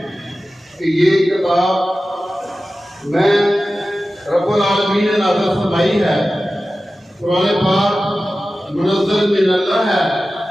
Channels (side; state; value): both; normal; correlation 0.95